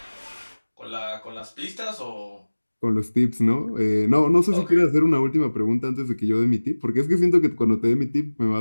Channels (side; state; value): both; inverted; correlation -1.00